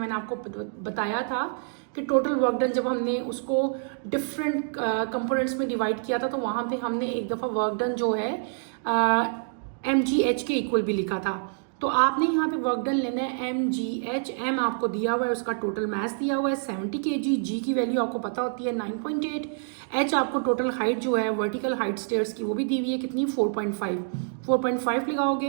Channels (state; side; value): silent; left; digital silence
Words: आपको बताया था कि टोटल वर्क डन जब हमने उसको डिफरेंट कंपोनेंट्स में डिवाइड किया था तो वहाँ पे हमने एक दफ़ा वर्क डन जो है mgh के इक्वल भी लिखा था। तो आपने यहाँ पे वर्क डन लेना है mgh, m आपको दिया हुआ है, उसका टोटल मास दिया हुआ है 70 kg, g की वैल्यू आपको पता होती है 9.8, h आपको टोटल हाइट जो है वर्टिकल हाइट स्टेयर्स की वो भी दी हुई है कितनी 4.5 लगाओगे